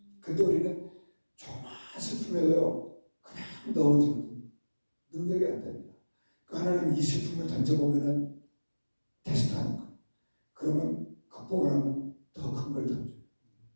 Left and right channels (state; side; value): inverted; both; correlation -1.00